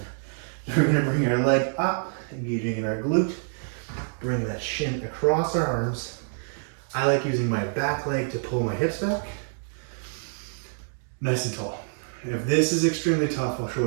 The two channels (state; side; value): silent; left; digital silence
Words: We're going to bring our leg up, engaging in our glute. Bring that shin across our arms. I like using my back leg to pull my hips back. Nice and tall. If this is extremely tough, I'll